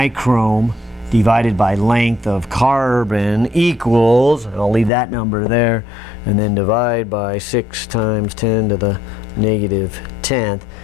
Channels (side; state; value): right; drops out; at 4.9 s